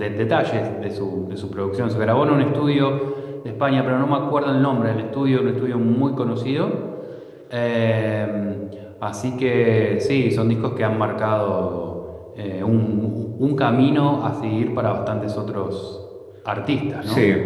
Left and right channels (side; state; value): both; identical; correlation 1.00